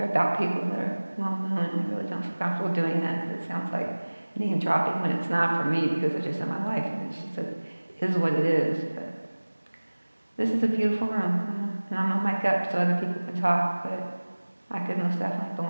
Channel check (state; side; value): inverted; both; correlation -1.00